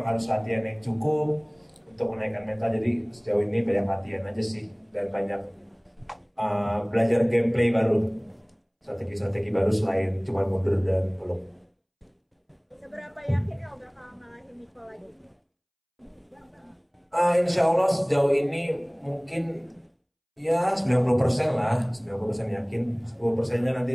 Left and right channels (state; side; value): identical; both; correlation 1.00